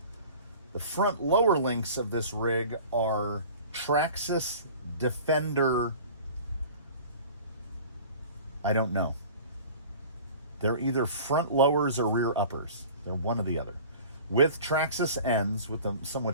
The front lower links of this rig are Traxxas Defender. I don't know. They're either front lowers or rear uppers. They're one or the other. With Traxxas ends with a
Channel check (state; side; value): inverted; both; correlation -0.42